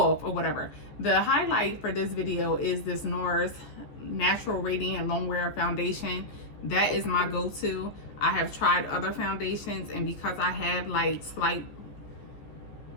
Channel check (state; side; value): late; right; 14 ms